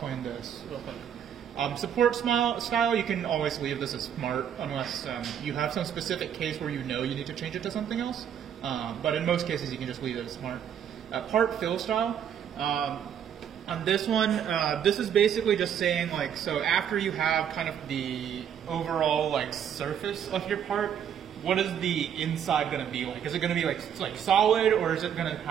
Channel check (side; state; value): left; quieter; 8.9 dB